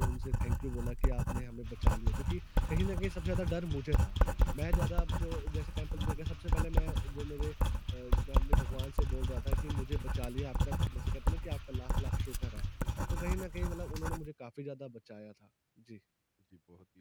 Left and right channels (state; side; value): identical; both; correlation 1.00